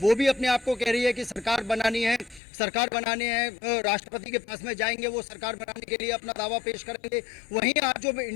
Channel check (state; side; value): drops out; right; at 2.4 s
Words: भी अपने आप को कह रही है कि सरकार बनानी है, सरकार बनाने हैं, राष्ट्रपति के पास में जाएंगे, वो सरकार बनाने के लिए अपना दावा पेश करेंगे। वहीं आज जो